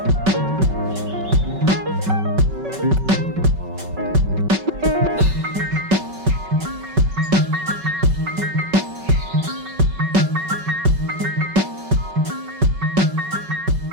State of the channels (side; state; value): left; late; 5.3 ms